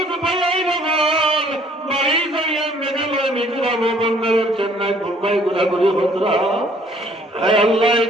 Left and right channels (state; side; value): normal; both; correlation 0.59